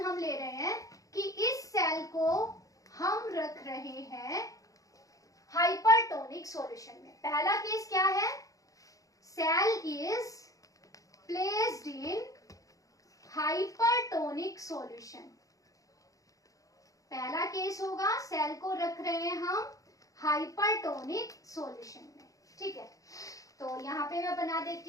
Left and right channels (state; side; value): late; right; 0.17 ms